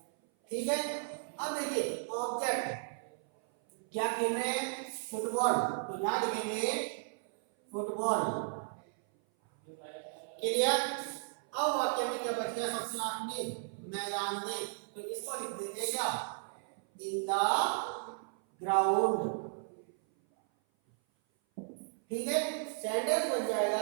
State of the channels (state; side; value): silent; left; 55 dB below the other